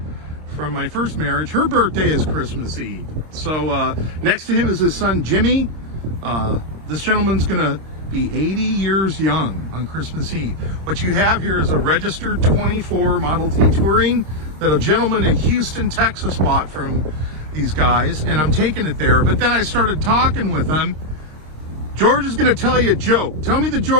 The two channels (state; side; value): late; left; 26 ms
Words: from my first marriage, her birthday is Christmas Eve. So next to him is his son, Jimmy. This gentleman's gonna be 80 years young on Christmas Eve. What you have here is a registered 24 Model T Touring that a gentleman in Houston, Texas bought from these guys, and I'm taking it there. But then I started talking with him. George is going to tell you a joke. Tell me the